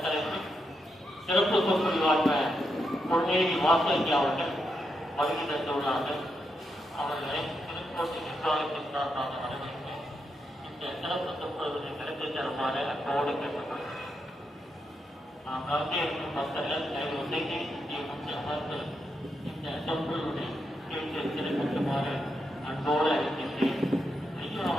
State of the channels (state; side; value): normal; both; correlation 0.83